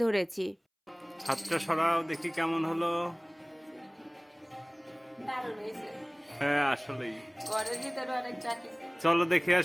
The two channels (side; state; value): both; identical; correlation 1.00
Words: ধরেছি। হাতটা সরাও দেখি কেমন হলো। দারুণ হয়েছে। হ্যাঁ আসলেই। ঘরের ভিতরে অনেক চাকি। চলো দেখে